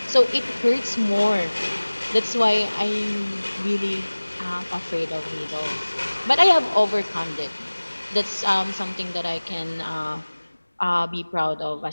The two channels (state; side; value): inverted; both; correlation -1.00